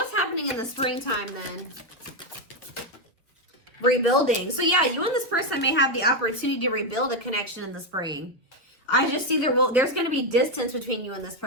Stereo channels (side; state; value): both; normal; correlation 0.05